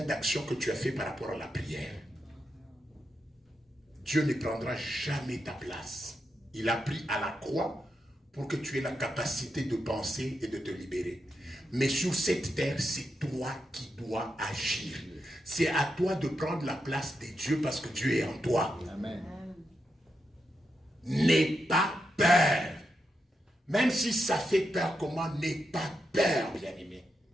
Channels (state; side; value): normal; both; correlation 0.85